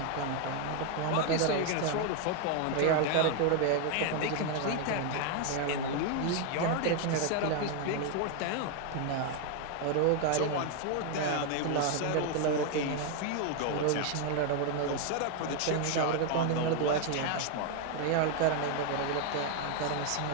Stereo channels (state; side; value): different; both; correlation 0.01